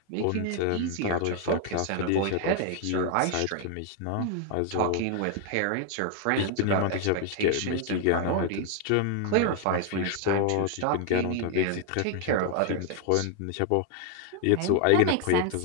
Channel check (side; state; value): both; different; correlation 0.00